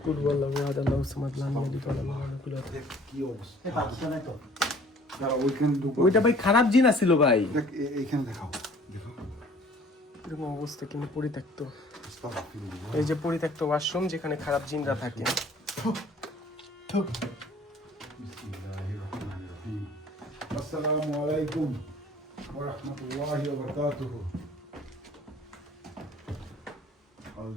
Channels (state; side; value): normal; both; correlation 0.53